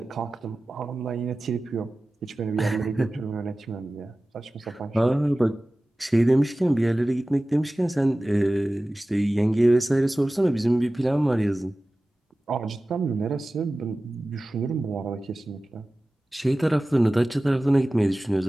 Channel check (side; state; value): both; normal; correlation 0.96